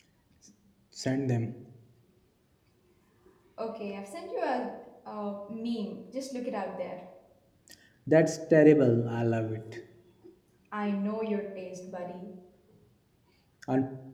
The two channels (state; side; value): identical; both; correlation 1.00